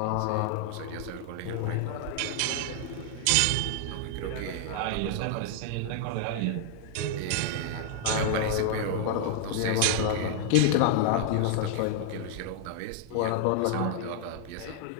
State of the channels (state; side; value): different; both; correlation 0.00